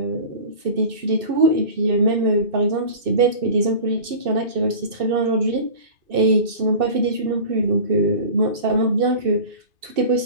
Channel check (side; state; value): left; late; 2.6 ms